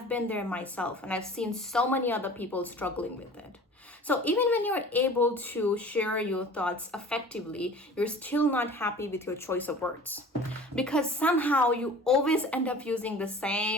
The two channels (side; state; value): both; normal; correlation 0.43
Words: been there myself and I've seen so many other people struggling with it. So even when you're able to share your thoughts effectively, you're still not happy with your choice of words. Because somehow you always end up using the